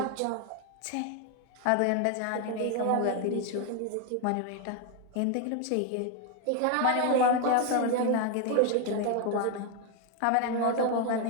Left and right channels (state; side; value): different; both; correlation 0.01